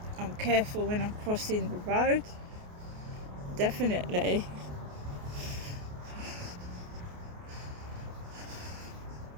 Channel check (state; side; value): late; left; 28 ms